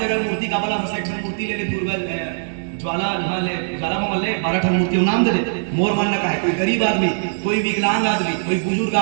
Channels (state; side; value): silent; left; digital silence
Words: मूर्ति का वाला बस एक मूर्ति ले ले, दुर्गा ज्वाला ले, ज्वाला में ले 12 ठन मूर्ति नाम दे दे। मोर मानना का है, कोई गरीब आदमी, कोई विकलांग आदमी, कोई बुजुर्ग